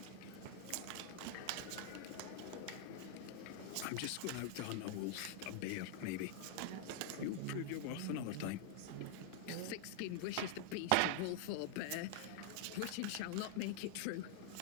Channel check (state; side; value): different; both; correlation -0.01